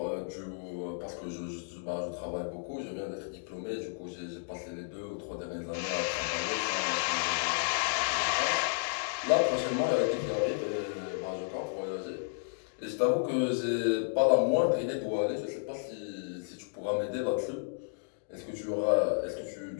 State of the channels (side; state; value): right; silent; digital silence